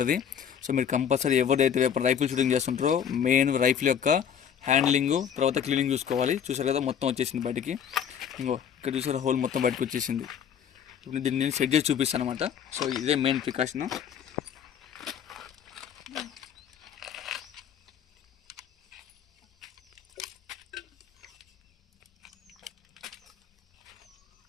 సో మీరు కంపల్సరీ ఎవరైతే రైఫిల్ షూటింగ్ చేస్తుంటారో మెయిన్ రైఫిల్ యొక్క హ్యాండ్లింగ్ తర్వాత క్లీనింగ్ చూసుకోవాలి. చూసారు కదా మొత్తం వచ్చేసింది బయటికి. ఇంకో ఇక్కడ చూసారా హోల్ మొత్తం బయటకు వచ్చేసింది. ఇప్పుడు దీన్ని నేను సెట్ చేసి చూపిస్తాను అనమాట. సో ఇదే మెయిన్ ప్రికాషన్.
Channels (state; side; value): quieter; right; 8.3 dB